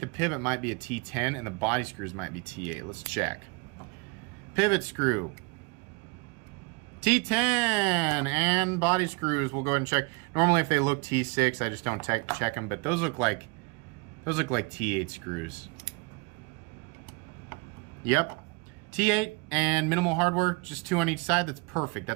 pivot might be a T10 and the body screws might be T8. Let's check. Pivot screw, T10, and body screws, we'll go ahead and check. Normally if they look T6, I just don't check them, but those look like T8 screws. Yep, T8 and minimal hardware, just 2 on each side. That's perfect.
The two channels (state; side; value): quieter; left; 29.5 dB